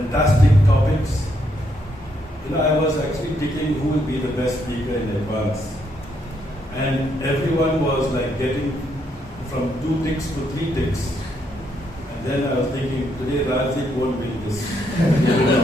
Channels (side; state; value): both; normal; correlation 0.75